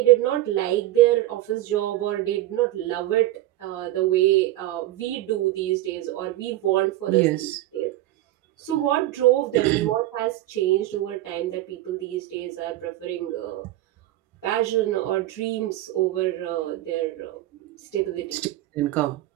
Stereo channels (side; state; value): left; quieter; 15.3 dB